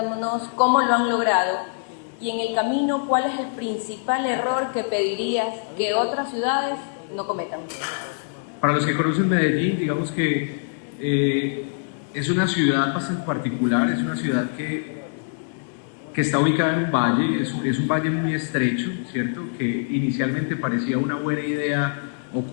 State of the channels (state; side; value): silent; right; digital silence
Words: cómo lo han logrado y en el camino cuál es el principal error que pedirías que otras ciudades no cometan. Para los que conocen Medellín, digamos que es una ciudad bastante particular, es una ciudad que está ubicada en un valle, es un valle muy estrecho, ¿cierto? Que inicialmente parecía una buena idea